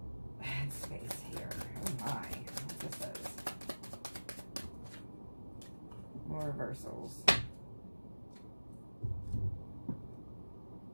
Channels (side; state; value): both; inverted; correlation -1.00